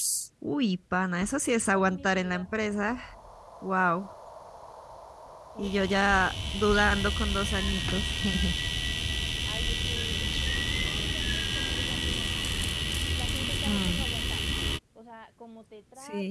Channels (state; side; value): identical; both; correlation 1.00